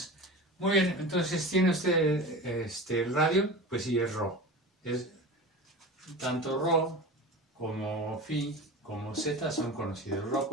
Muy bien, entonces tiene usted el radio, pues sí, es ρ. Es, tanto ρ como phi como z son conocidos. Ρ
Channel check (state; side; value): normal; both; correlation 0.31